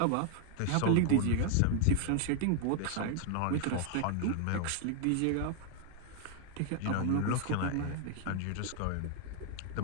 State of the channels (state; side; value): different; both; correlation 0.00